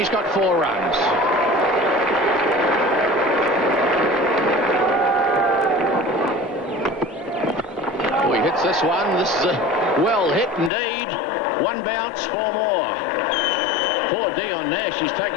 got 4 runs. Oh, he hits this one. This is a well hit indeed. 1 bounce, 4 more. Poor Dion Nash, he's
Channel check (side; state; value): right; drops out; at 10.7 s